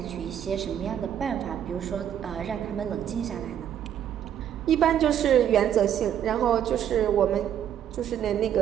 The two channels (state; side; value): quieter; left; 9.9 dB